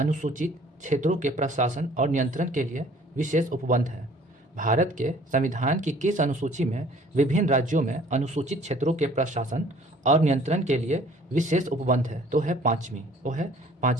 क्षेत्रों के प्रशासन और नियंत्रण के लिए विशेष उपबंध है? भारत के संविधान की किस अनुसूची में विभिन्न राज्यों में अनुसूचित क्षेत्रों के प्रशासन और नियंत्रण के लिए विशेष उपबंध है? तो है 5वीं, वो है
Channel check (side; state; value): both; normal; correlation 0.54